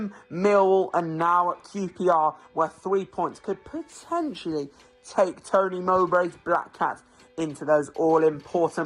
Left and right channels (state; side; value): identical; both; correlation 1.00